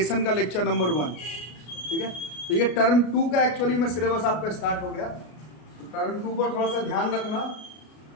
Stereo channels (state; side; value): late; right; 33 ms